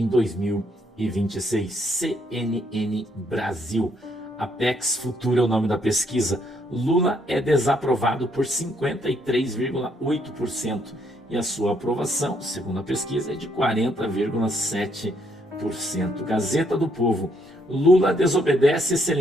2026. CNN Brasil. Apex Futura é o nome da pesquisa. Lula é desaprovado por 53,8% e a sua aprovação, segundo a pesquisa, é de 40,7%. Gazeta do Povo. Lula desobedece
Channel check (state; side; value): normal; both; correlation 0.72